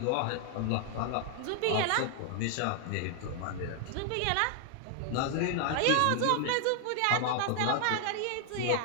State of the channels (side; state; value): both; different; correlation 0.00